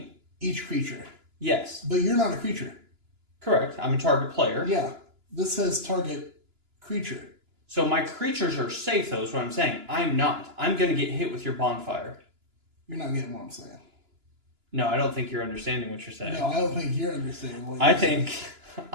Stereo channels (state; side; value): late; left; 2.9 ms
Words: Each creature. Yes. But you're not a creature. Correct. I'm a target player. Yeah. This says target creature. So my creatures are safe, though, is what I'm saying. I'm not. I'm going to get hit with your bonfire. You're not getting what I'm saying. No, I don't think you're understanding what you're saying. No, I don't think you're understanding what you're saying. I think